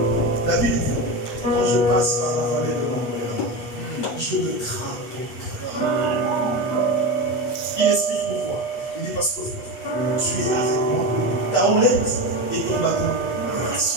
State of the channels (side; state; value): right; late; 8.4 ms